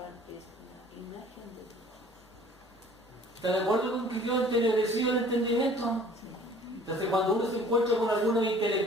es la imagen de Dios. ¿Está de acuerdo con que quedó entenebrecido el entendimiento? Entonces cuando uno se encuentra con algunos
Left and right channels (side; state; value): both; normal; correlation 0.51